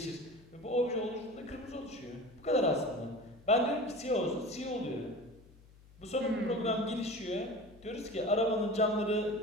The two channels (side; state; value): left; noise; hum, 24 dB below the sound